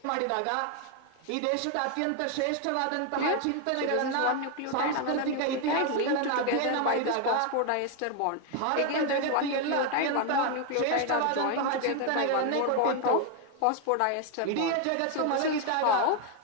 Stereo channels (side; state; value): both; different; correlation 0.01